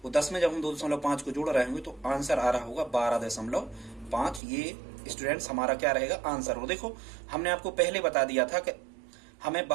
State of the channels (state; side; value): drops out; left; at 4.4 s